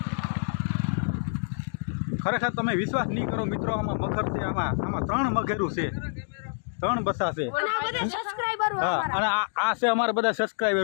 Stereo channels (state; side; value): silent; right; digital silence